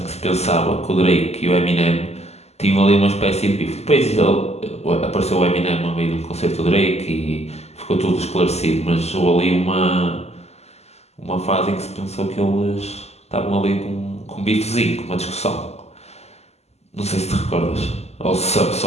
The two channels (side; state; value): right; late; 0.31 ms